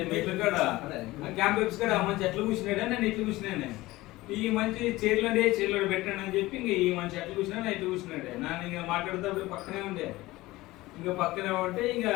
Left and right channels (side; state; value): right; quieter; 18.8 dB